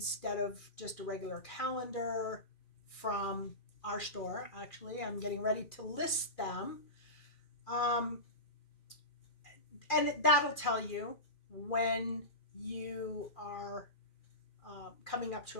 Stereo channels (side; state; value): right; late; 2.4 ms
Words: of just a regular calendar from our store. Actually, I'm getting ready to list them. And that'll tell you when you are coming up to